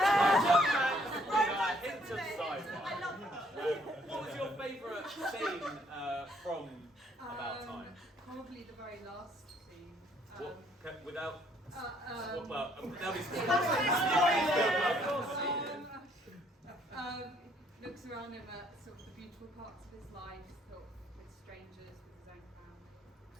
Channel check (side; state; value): both; normal; correlation 0.65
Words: hint of scene from About Time? Probably the very last scene. What, without. Well, Looks around him at sort of the beautiful parts of his life, sort of with strangers, with his own family.